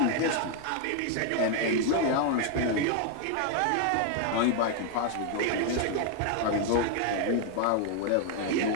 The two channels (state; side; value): different; both; correlation 0.00